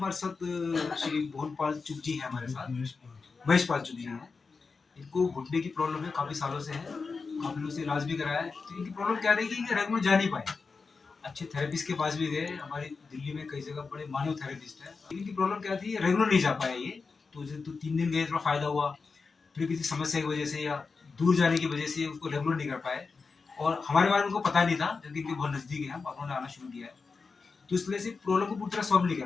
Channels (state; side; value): quieter; right; 4.6 dB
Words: साथ श्री मोहनपाल चुग जी हैं हमारे साथ, महेशपाल चुग जी हैं। इनको घुटने की प्रॉब्लम है, काफ़ी सालों से है, काफ़ी लोगों से इलाज भी कराया है। तो इनकी प्रॉब्लम क्या रही कि रेगुलर जा नहीं पाए, अच्छे थेरेपिस्ट के पास भी गए, हमारी दिल्ली में कई जगह बड़े मानव थेरेपिस्ट है। इनकी प्रॉब्लम क्या थी, रेगुलर नहीं जा पाए ये। तो 3 दिन गए, थोड़ा फायदा हुआ, फिर किसी समस्या की वजह से या दूर जाने की वजह से उसको रेगुलर नहीं कर पाए, और हमारे बारे में उनको पता नहीं था, क्योंकि इनके बहुत नज़दीक है, हम उन्होंने आना शुरू किया है। तो इसलिए से प्रॉब्लम को पूरी तरह सॉल्व नहीं